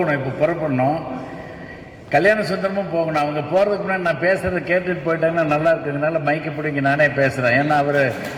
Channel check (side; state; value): both; identical; correlation 1.00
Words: இப்போ புறப்படணும். கல்யாண சுந்தரமும் போகணும். அவங்க போகிறதுக்கு முன்னாடி நான் பேசுகிறத கேட்டுட்டு போயிட்டாங்கன்னா நல்லா இருக்குதுனால மைக்கை பிடிங்க நானே பேசுகிறேன். ஏன்னா